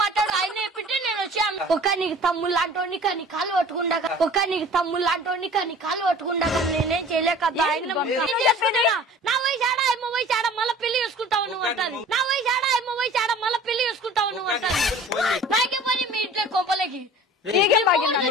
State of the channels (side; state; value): both; normal; correlation 0.45